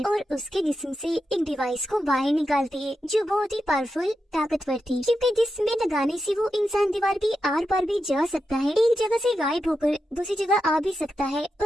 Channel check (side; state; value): both; normal; correlation 0.88